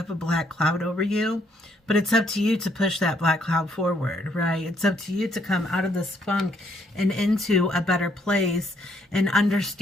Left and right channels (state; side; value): normal; both; correlation 0.69